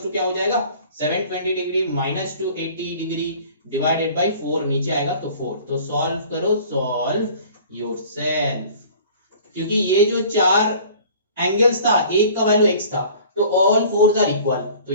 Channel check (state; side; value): inverted; both; correlation -0.47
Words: टू क्या हो जाएगा 720 degree minus 280 degree divided bye 4, नीचे आएगा तो 4, तो सॉल्व करो, सॉल्व योरसेल्फ, क्योंकि ये जो चार एंगल्स था एक का वैल्यू x था, तो ऑल फोर्स आर इक्वल, तो